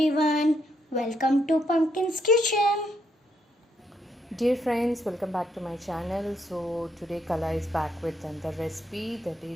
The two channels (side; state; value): both; normal; correlation 0.75